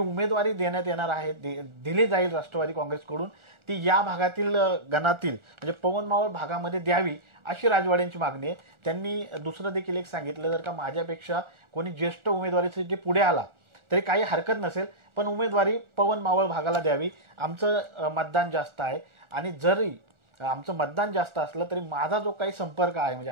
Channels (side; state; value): left; late; 1.4 ms